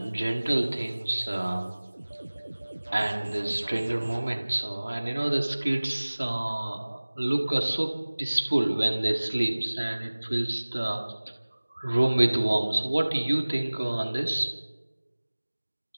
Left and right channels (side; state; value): both; inverted; correlation -1.00